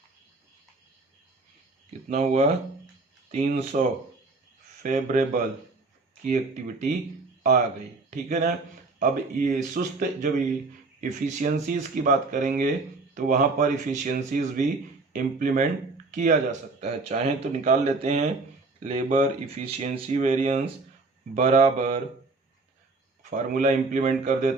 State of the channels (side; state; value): left; quieter; 3.6 dB